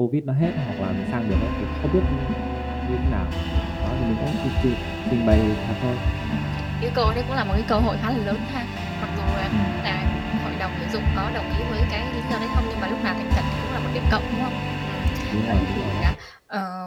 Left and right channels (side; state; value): both; identical; correlation 1.00